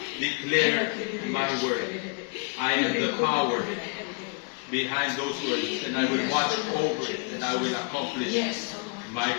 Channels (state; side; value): quieter; right; 33.9 dB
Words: Declare my word. I am the power behind those words, and I will watch over it, and I will accomplish my